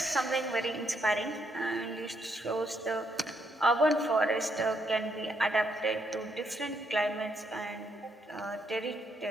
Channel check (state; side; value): normal; both; correlation 0.75